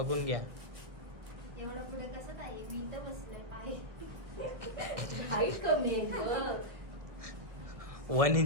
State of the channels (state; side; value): late; left; 1.4 ms